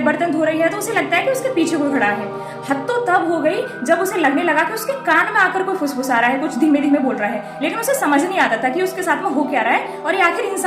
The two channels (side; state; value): both; identical; correlation 1.00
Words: बर्तन धो रही है तो उसे लगता है कि उसके पीछे कोई खड़ा है। हद तो तब हो गई जब उसे लगने लगा कि उसके कान में आकर कोई फुसफुसा रहा है, कुछ धीमे धीमे बोल रहा है, लेकिन उसे समझ नहीं आता था कि उसके साथ में हो क्या रहा है और ये आखिर